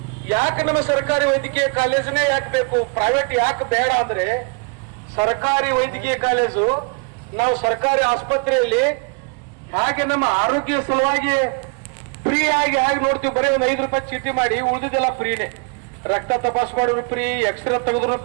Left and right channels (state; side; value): quieter; left; 33.0 dB